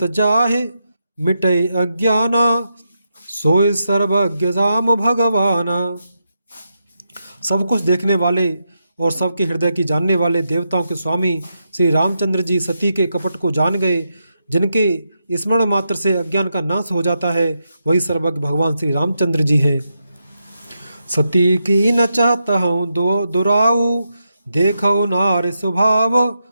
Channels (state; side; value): inverted; both; correlation -0.85